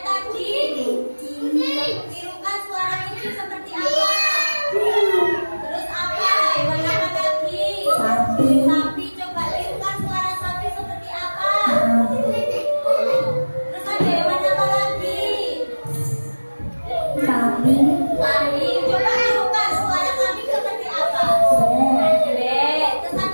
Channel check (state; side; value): inverted; both; correlation -1.00